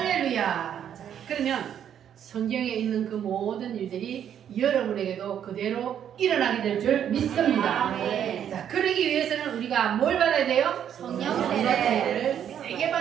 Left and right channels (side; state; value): left; quieter; 9.4 dB